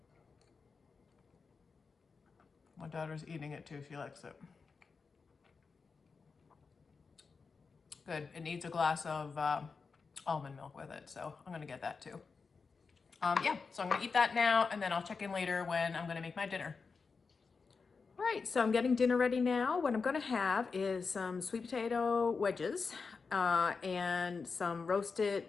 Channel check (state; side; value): quieter; right; 4.9 dB